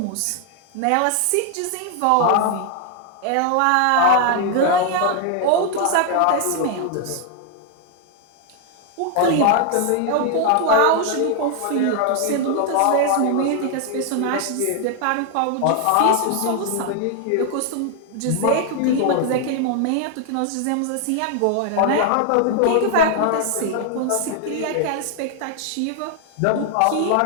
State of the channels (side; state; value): both; different; correlation 0.00